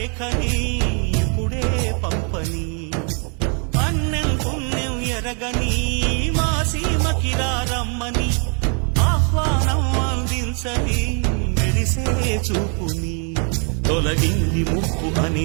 ఇప్పుడే పంపని అన్నం పుణ్యం ఎరగని మా సీమకిరా రమ్మని ఆహ్వానం అందించని మెరిసే చూపుని తొలగింది ముప్పు అని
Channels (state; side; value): quieter; left; 38.8 dB